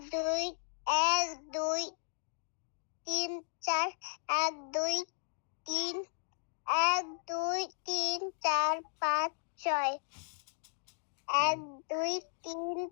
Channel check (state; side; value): silent; right; digital silence